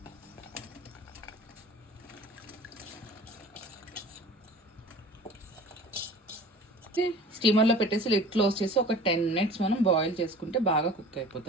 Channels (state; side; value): normal; both; correlation 0.42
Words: స్టీమర్లో పెట్టేసి లిడ్ క్లోజ్ చేసి ఒక 10 minutes మనం బాయిల్ చేసుకుంటే బాగా కుక్